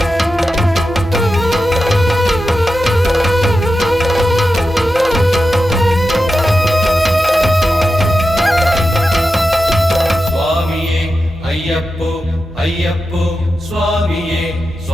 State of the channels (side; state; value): right; noise; hum, 18 dB below the sound